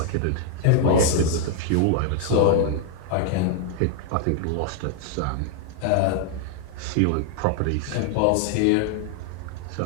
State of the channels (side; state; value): both; different; correlation 0.00